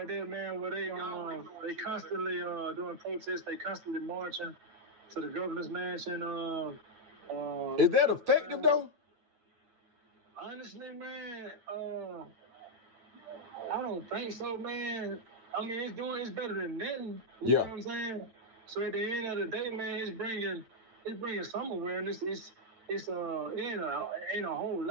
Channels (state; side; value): late; left; 9.3 ms